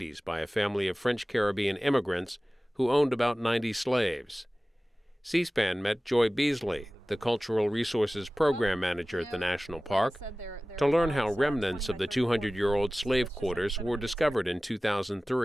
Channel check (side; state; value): both; normal; correlation 0.97